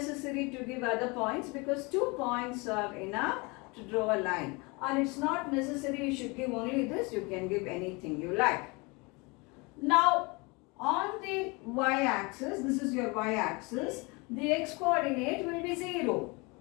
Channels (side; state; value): right; quieter; 27.6 dB